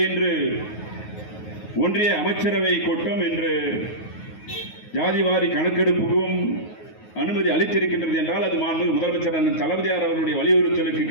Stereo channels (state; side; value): late; right; 9.4 ms